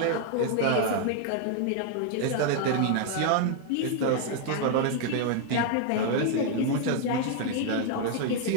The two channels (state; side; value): different; both; correlation 0.00